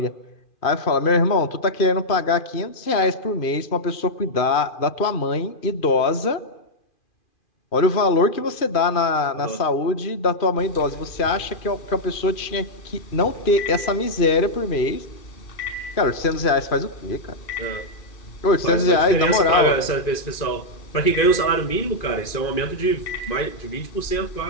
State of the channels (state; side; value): late; right; 2.4 ms